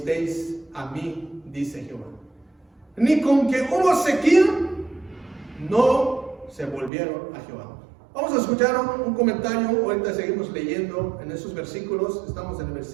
a mí, dice Jehová. Ni con que hubo sequía, no se volvieron a Jehová. Vamos a escuchar un comentario. Ahorita seguimos leyendo en esos versículos. Estamos en el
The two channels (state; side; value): drops out; left; at 6.9 s